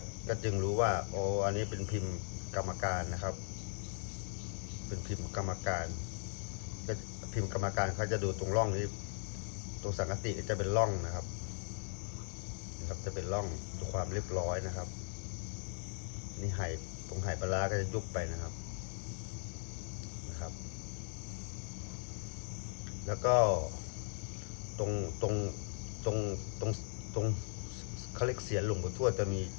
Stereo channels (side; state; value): right; silent; 52 dB below the other